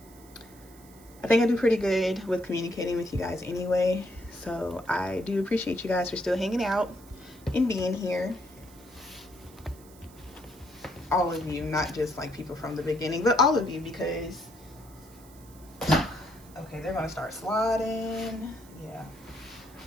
I think I do pretty good with communicating with you guys anyway. So I do appreciate you guys for still hanging out and being here. All of you, not just like people from the beginning, but all of you, because, okay, they're gonna start sliding. Yeah.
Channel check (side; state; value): right; noise; hiss, 24 dB below the sound